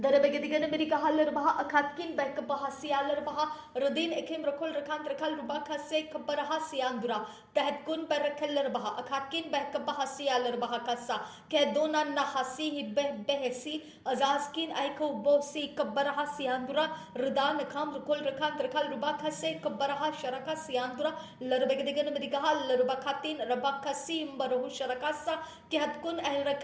America Haller Baha, Akatkin Beck Bahasialer Baha, Rodin Ekim Rakul Rakant Rakal Rubaka Se Kabarahasi Andura, Tahatkun Barakeller Baha, Akatkin Beck Bahasialer Bahakasa, Kedona Nahasi Behesi, Azaskin Aiko Bosi Kabarahasi Andura, Rudan Akam Rukul Rakant Rakal Rubaka Se Kabaraha Sharakasi Andura, Larbegadigan America Haller Bakatin Rabakasi Mbarahu Sharakasa, Kihatkun El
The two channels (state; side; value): identical; both; correlation 1.00